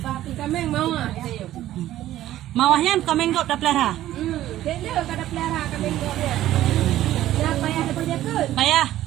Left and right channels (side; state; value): left; quieter; 13.7 dB